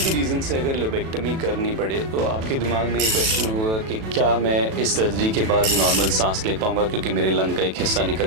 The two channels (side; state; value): left; late; 37 ms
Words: रीज़न से अगर लोबेक्टमी करनी पड़े तो आपके दिमाग में ये क्वेश्चन होगा कि क्या मैं इस सर्जरी के बाद नॉर्मल सांस ले पाऊंगा क्योंकि मेरे लंग का एक हिस्सा